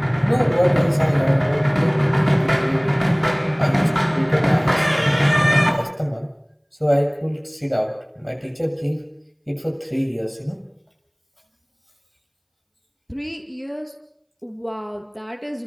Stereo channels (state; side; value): identical; both; correlation 1.00